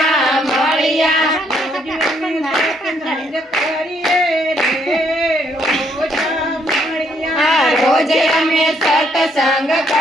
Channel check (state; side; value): normal; both; correlation 0.71